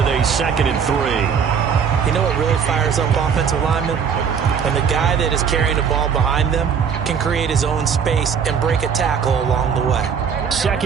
a 2nd and 3. You know what really fires up offensive linemen? When the guy that is carrying the ball behind them can create his own space and break a tackle along the way.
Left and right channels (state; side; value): quieter; left; 6.9 dB